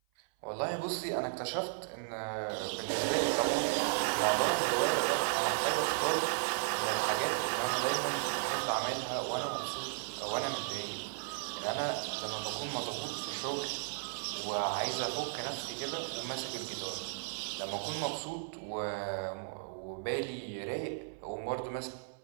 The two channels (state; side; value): silent; left; 54 dB below the other